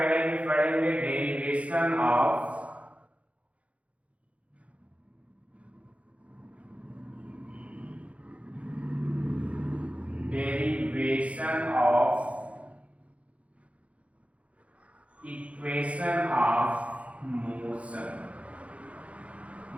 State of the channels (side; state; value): left; late; 0.064 ms